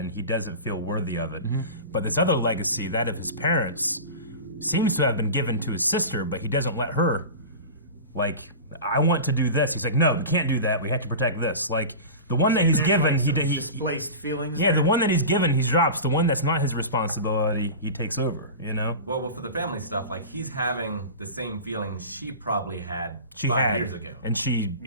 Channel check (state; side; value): inverted; both; correlation -0.31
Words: he doesn't feel worthy of it. But this other legacy, that of his parents, seems to have been given to his sister, but he doesn't let her, like, I want to do this. He's like, no, we can't do that. We have to protect this. Like, the one that he's given, he displaced feelings. Yeah, the one that he's given, he drops. The one that's not his responsibility, he takes over. You know. Well, for the family stuff, like he's having the same feelings she probably had She 5 had, years ago, and she